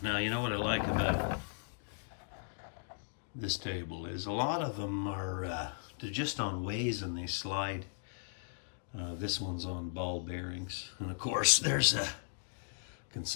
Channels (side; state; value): right; silent; digital silence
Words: Now, you know what I like about this table is a lot of them are they're just on ways and they slide. This one's on ball bearings, and of course there's a